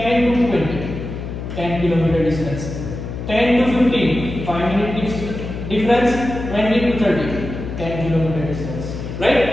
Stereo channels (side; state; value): left; noise; hum, 7 dB below the sound